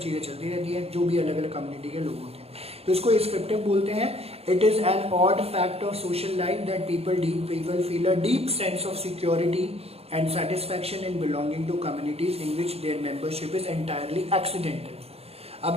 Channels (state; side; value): late; left; 0.29 ms